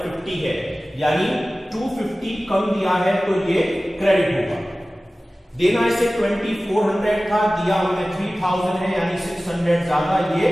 है, यानी 250 कम दिया है तो ये क्रेडिट होगा। देना इसे 2400 था, दिया हमने 3000 है, यानी 600 ज्यादा, ये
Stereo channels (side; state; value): both; normal; correlation 0.97